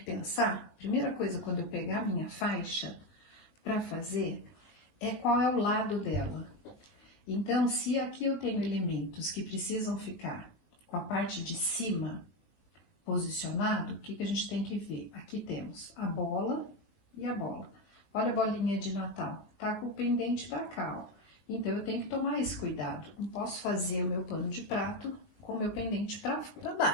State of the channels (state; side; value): late; right; 20 ms